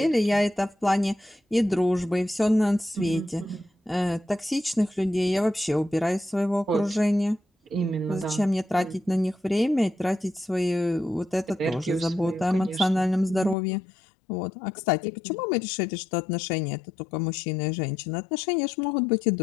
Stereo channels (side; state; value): right; drops out; at 13.6 s